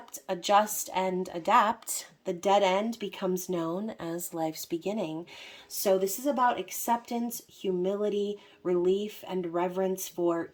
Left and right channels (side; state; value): both; identical; correlation 1.00